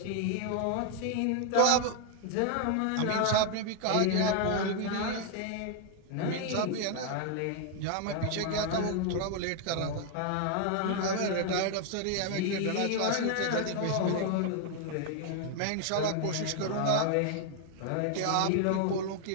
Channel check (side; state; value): both; different; correlation 0.00